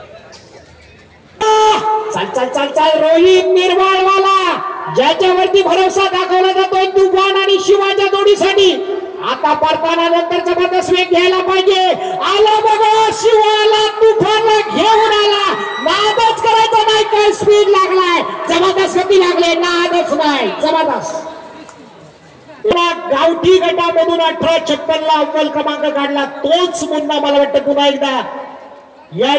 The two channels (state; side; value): identical; both; correlation 1.00